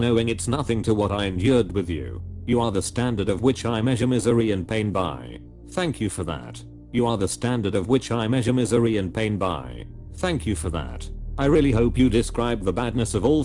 it's nothing to what I endured with you. You are the standard of which I measure misery and pain by. Thank you for that. You are the standard of which I measure misery and pain by. Thank you for that. I really hope you describe the badness of all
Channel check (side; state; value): both; identical; correlation 1.00